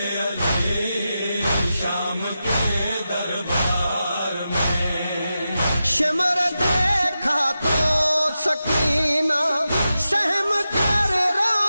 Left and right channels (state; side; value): inverted; both; correlation -0.90